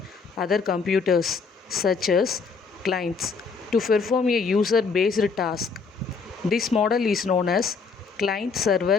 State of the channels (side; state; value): right; quieter; 5.0 dB